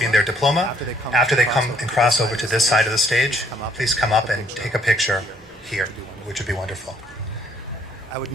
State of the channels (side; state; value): right; noise; hum, 28 dB below the sound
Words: their diploma, after they come and cross over to this side of the stage, please come up and take a picture here, which would be wonderful. I would